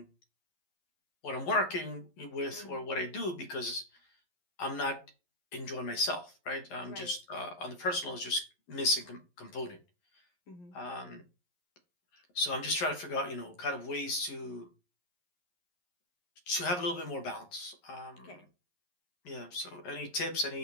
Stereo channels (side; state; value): right; late; 11 ms